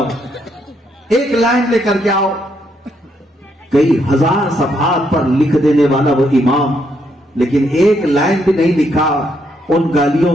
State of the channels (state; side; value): normal; both; correlation 0.75